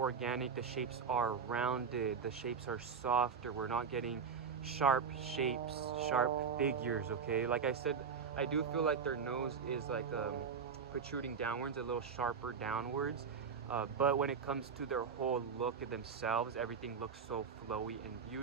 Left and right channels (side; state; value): left; quieter; 6.2 dB